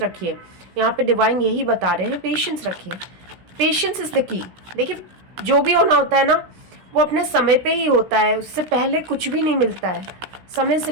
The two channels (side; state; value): left; late; 16 ms